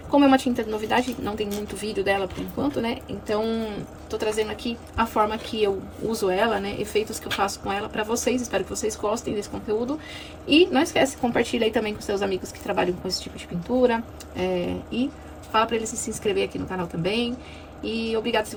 como é uma tinta de novidade, não tem muito vídeo dela por enquanto, né? Então, tô trazendo aqui a forma que eu uso ela, né? Efeitos que eu faço com ela pra vocês. Espero que vocês gostem desse conteúdo. E não esquece, compartilha aí também com seus amigos que trabalham com esse tipo de pintura. E fala pra eles se inscrever aqui no canal também. E obrigado se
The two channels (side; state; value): both; identical; correlation 1.00